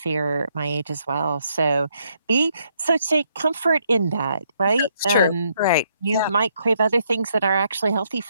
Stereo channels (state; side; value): inverted; both; correlation -0.73